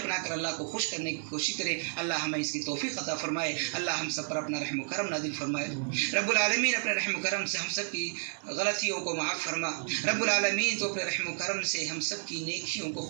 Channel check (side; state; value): left; silent; 57 dB below the other